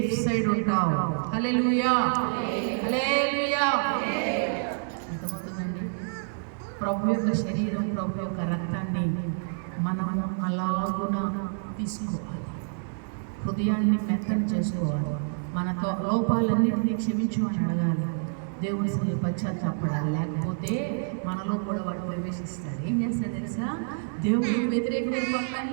సైడ్ ఉంటావు. హల్లెలూయా, హల్లెలూయా. అర్థమవుతుందండి? ప్రభు యొక్క శరీరం, ప్రభు యొక్క రక్తాన్ని మనము అలాగున తీసుకోవాలి, హృదయాన్ని మెత్తన చేసుకోవాలి, మన లోపాలన్నింటినీ క్షమించు అని అడగాలి, దేవుడి సరి పశ్చాత్తాపడాలి. లేకపోతే మనలో కూడా వాడు ప్రవేశిస్తాడు. ఏం చేస్తాడు తెలుసా? దేవుడికి వ్యతిరేకమైన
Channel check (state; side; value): silent; left; digital silence